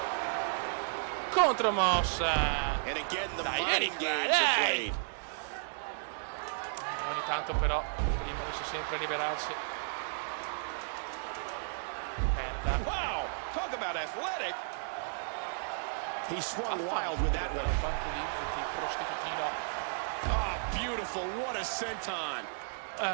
Contromossa. Dai, Eric, dai. Ogni tanto però Primo riesce sempre a liberarsi. Merda. Wow, talk about athletic. He swung wild with that one. Fanculizzati, prostitutino. Ah, beautiful. What a senton.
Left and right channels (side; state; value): left; silent; digital silence